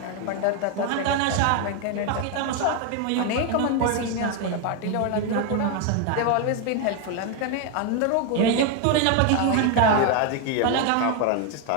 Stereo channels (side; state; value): both; different; correlation 0.01